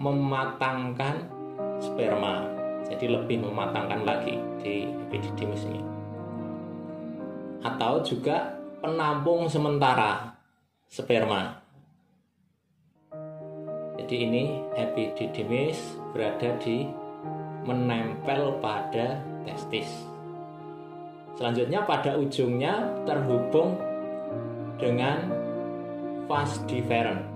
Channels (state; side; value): identical; both; correlation 1.00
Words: sperma. Jadi lebih mematangkan lagi di epididymis ini. Atau juga penampung sementara sperma. Jadi ini epididymis berada di menempel pada testis. Selanjutnya pada ujungnya terhubung dengan vas deferens.